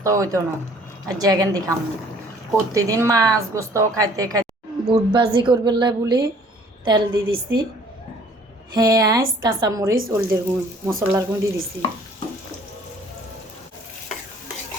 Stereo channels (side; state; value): both; normal; correlation 0.56